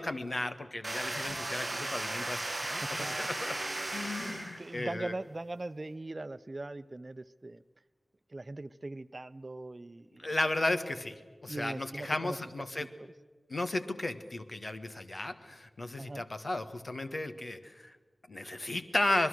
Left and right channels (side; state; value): both; normal; correlation 0.96